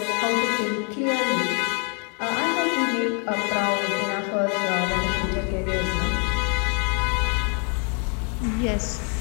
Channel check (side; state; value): right; quieter; 39.6 dB